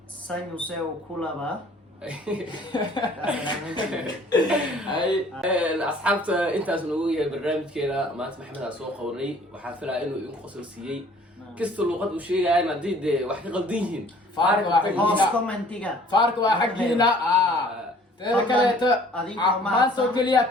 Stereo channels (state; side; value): normal; both; correlation 0.54